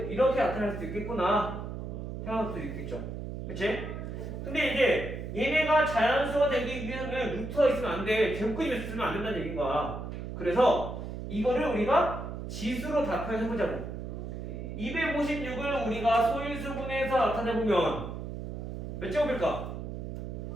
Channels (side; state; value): right; noise; hum, 7 dB below the sound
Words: 이렇게 나타날 수도 있겠구나 생각할 수도 있겠죠. 그치? 근데 이제 얘네가 자연수가 되기 위해서는 루트가 있으면 안 돼. 제곱근이 있으면 안 된다는 얘기인 거야. 그래서 이거를 우리가 지수로 답변해보자고. 256을 우리가 소인수분해서 나타내보면 몇 제곱일까?